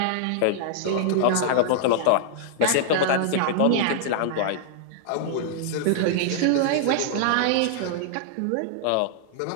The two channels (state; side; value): different; both; correlation -0.01